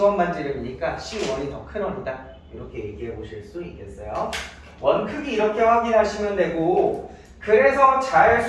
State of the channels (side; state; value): both; identical; correlation 1.00